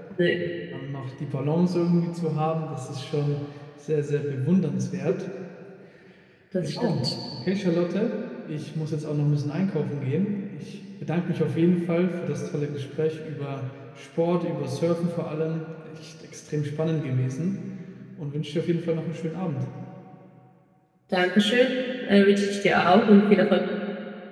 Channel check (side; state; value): both; identical; correlation 1.00